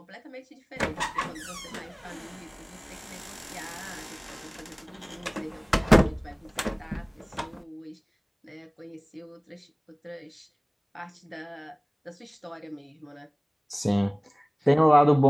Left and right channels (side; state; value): both; identical; correlation 1.00